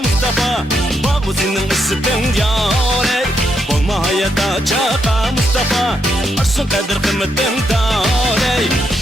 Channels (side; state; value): both; normal; correlation 0.80